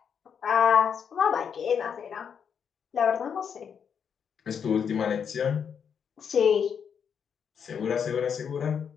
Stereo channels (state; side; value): quieter; right; 7.3 dB